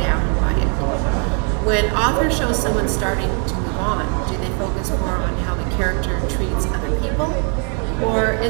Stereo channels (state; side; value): quieter; left; 39.0 dB